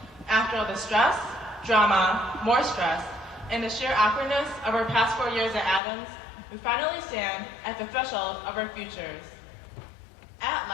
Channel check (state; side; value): drops out; right; at 5.8 s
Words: After all the stress, drama, more stress, and the sheer awkwardness of our past 4 years at Adams, we finally stand at the threshold of our futures. At